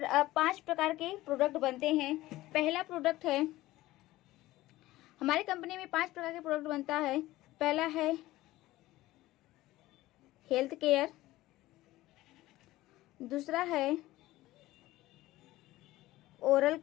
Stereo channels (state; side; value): quieter; right; 17.1 dB